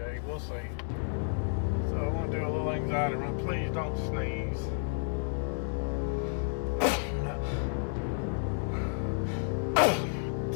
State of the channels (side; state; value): right; silent; digital silence